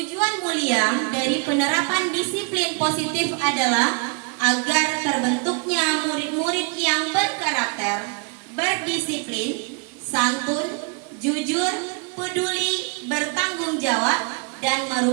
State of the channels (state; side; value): quieter; left; 34.8 dB